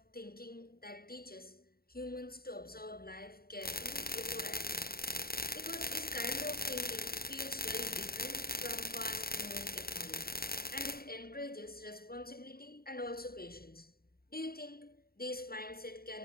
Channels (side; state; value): right; late; 0.44 ms